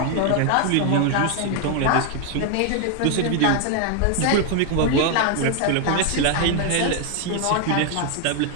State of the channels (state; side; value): different; both; correlation 0.01